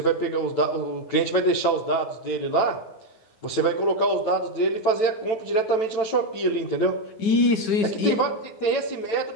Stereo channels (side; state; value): right; late; 9.1 ms